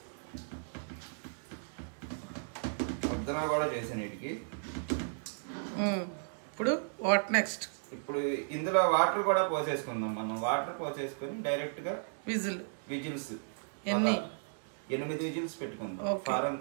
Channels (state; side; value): silent; left; digital silence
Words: ముద్దన కూడా చేసాను వీటికి. ఇప్పుడు వాట్ నెక్స్ట్? ఇప్పుడు ఇందులో వాటర్ కూడా పోసేసుకుందాం. మనం వాటర్ పోసేసుకొని డైరెక్ట్ గా విజిల్స్ 8 విజిల్స్ పెట్టుకుందాం, ఫారం